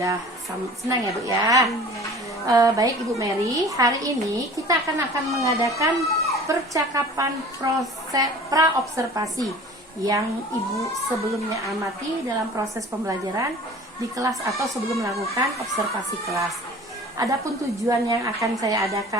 senang ya Bu ya. Baik Ibu Mary, hari ini kita akan mengadakan percakapan proses pra-observasi yang Ibu sebelumnya amati dalam proses pembelajaran di kelas atau sebelum melakukan observasi kelas. Adapun tujuan yang akan saya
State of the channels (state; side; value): normal; both; correlation 0.44